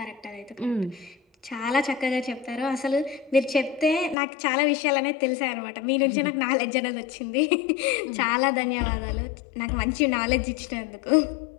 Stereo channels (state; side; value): drops out; right; at 4.2 s